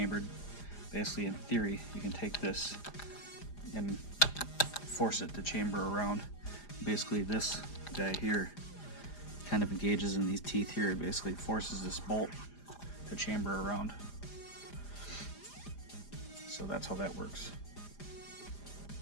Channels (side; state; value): right; late; 4.9 ms